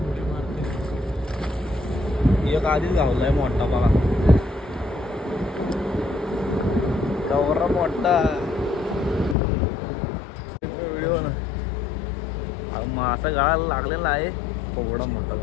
एक आधीच गावलाय मोठा बघा, गौरा मोठा व्हिडिओ ना मासा गळाला लागलेला आहे, एवढा मोठा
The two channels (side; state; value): right; drops out; at 9.3 s